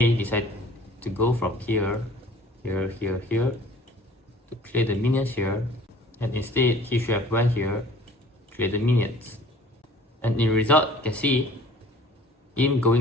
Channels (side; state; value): both; normal; correlation 0.50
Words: decided to go from here to clear the minions here, and instead he should have went here, clear the minions. And in result, you can see him